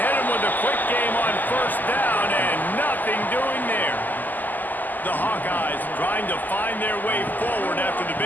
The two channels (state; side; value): late; right; 0.085 ms